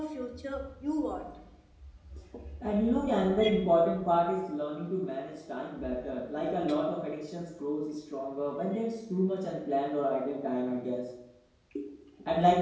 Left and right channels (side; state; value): both; identical; correlation 1.00